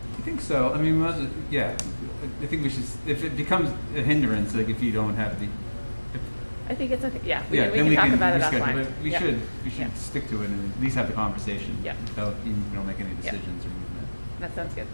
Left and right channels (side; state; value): both; inverted; correlation -1.00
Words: I think so. I mean, yeah. I think we should. If it becomes a hindrance, like if you don't have the. I think it's okay. Yeah, we Yeah, can then talk about it reschedule, offline. but we Yeah. should Yeah. stick to it and at least have the conversation. Yeah. Without you don't make any Yeah. decisions or movement. That sounds good.